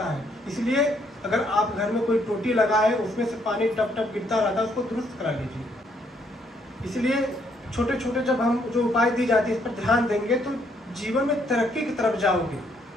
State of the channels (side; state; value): both; normal; correlation 0.71